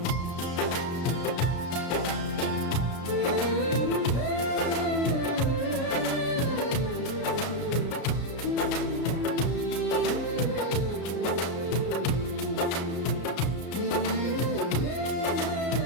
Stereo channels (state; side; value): late; right; 33 ms